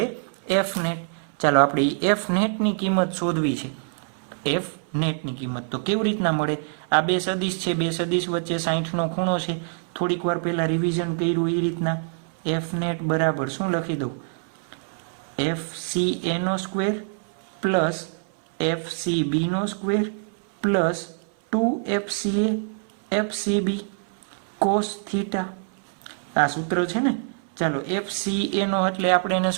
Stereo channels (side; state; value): left; silent; 60 dB below the other